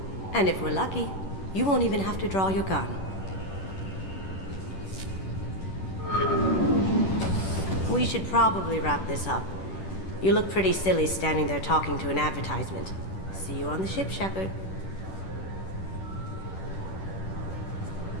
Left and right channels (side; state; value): right; late; 10 ms